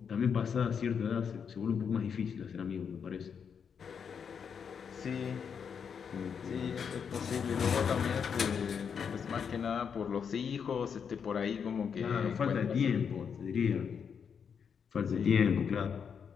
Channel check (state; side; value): quieter; right; 6.9 dB